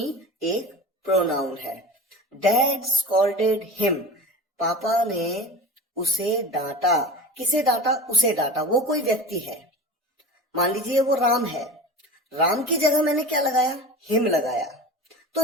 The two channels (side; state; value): both; normal; correlation 0.34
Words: एक प्रोनाउन है। डैड स्कॉल्डेड हिम, पापा ने उसे डांटा। किसे डांटा, उसे डांटा, वो कोई व्यक्ति है। मान लीजिए वो राम है, राम की जगह मैंने क्या लगाया, हिम लगाया। तो